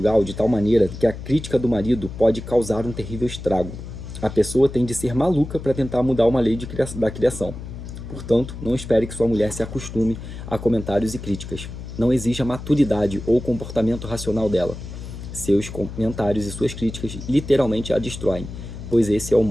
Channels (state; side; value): noise; left; hum, 10 dB below the sound